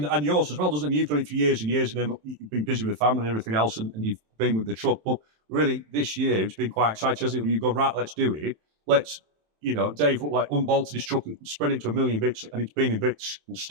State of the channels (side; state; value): left; late; 27 ms